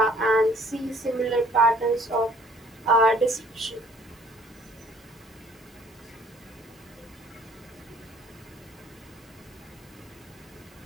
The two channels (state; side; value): normal; both; correlation 0.58